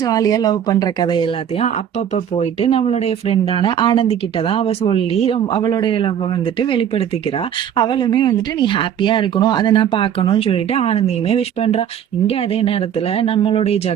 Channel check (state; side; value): quieter; left; 9.3 dB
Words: ஜாலியாக லவ் பண்ணுற கதை எல்லாத்தையும் அப்பப்போ போயிட்டு நம்மளுடைய ஃப்ரெண்டான ஆனந்தி கிட்ட தான் அவள் சொல்லி அவளுடைய லவ்வை வந்துட்டு வெளிப்படுத்திக்கிறா. அவளுமே வந்துட்டு நீ ஹாப்பியாக இருக்கணும், அதை நான் பார்க்கணும்னு சொல்லிட்டு ஆனந்தியுமே விஷ் பண்ணுறா. இங்கே அதே நேரத்தில் நம்மளுடைய